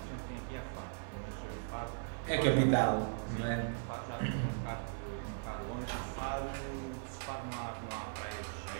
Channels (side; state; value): left; silent; digital silence